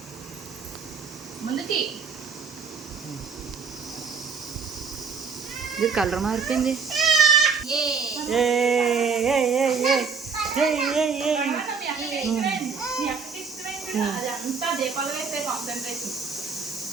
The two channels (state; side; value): quieter; left; 5.5 dB